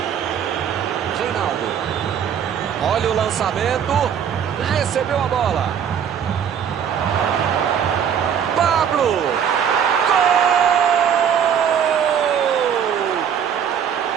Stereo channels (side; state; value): left; quieter; 8.3 dB